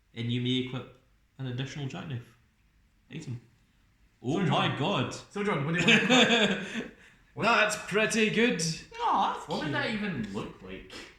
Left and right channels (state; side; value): identical; both; correlation 1.00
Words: and you may equip an additional Jackknife item. Oh So my John- god! So, John, what do you want? That's pretty good. No, that's What would cute. that even look like?